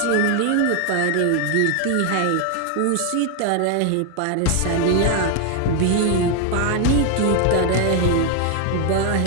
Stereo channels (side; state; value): both; different; correlation 0.01